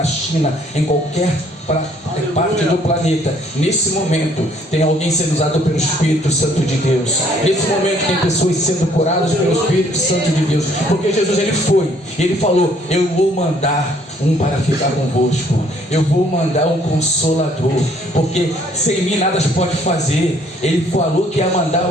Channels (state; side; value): normal; both; correlation 0.63